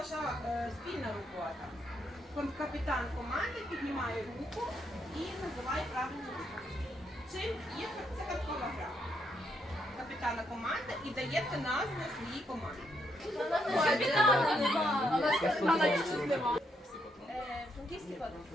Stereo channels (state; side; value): normal; both; correlation 0.77